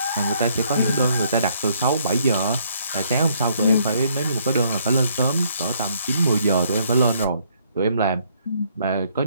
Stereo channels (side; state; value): both; inverted; correlation -0.68